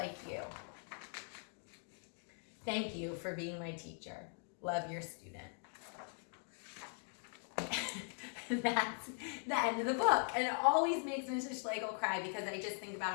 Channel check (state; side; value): silent; right; 50 dB below the other